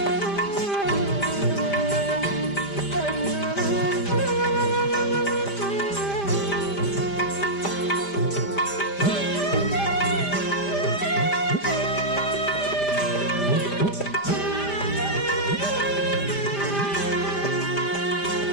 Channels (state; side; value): late; right; 5.0 ms